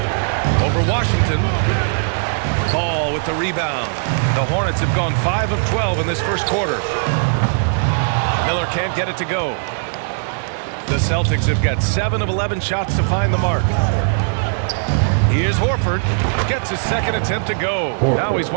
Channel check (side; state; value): left; silent; digital silence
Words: Over Washington. Ball with the rebound. The Hornets have gone 5 of 12 in this first quarter. Miller can't get it to go. The Celtics have got 7 of 11 shots to find the mark. Here's Horford. Gets his second attempt to go. Now he's